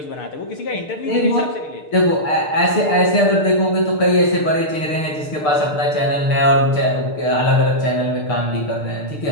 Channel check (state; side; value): late; right; 6.6 ms